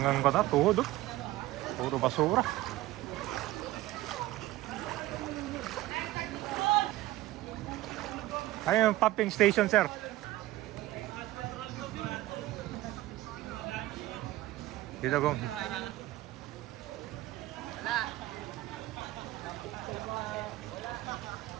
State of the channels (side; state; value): left; quieter; 16.7 dB